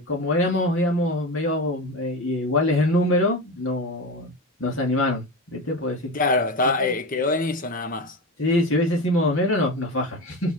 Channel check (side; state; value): both; normal; correlation 0.23